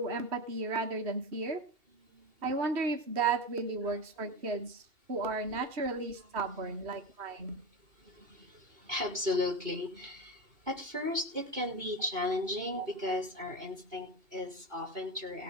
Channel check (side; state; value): left; late; 2.7 ms